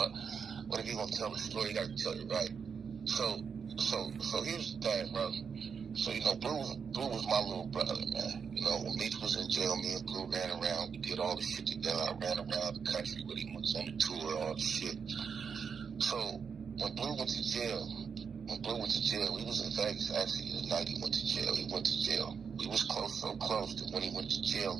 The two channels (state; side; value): quieter; left; 6.3 dB